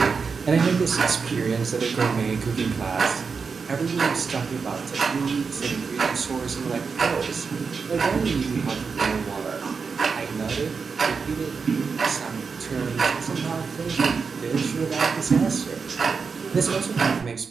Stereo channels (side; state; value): left; quieter; 5.3 dB